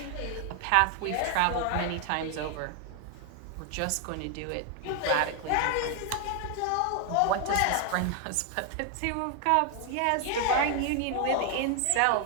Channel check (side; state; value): both; different; correlation 0.00